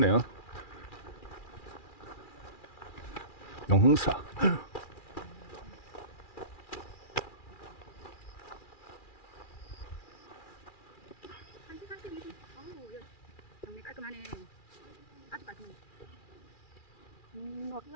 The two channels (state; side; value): late; right; 2.4 ms